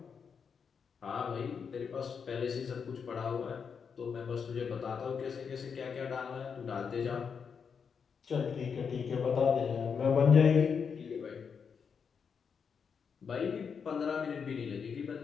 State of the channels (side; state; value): right; quieter; 6.3 dB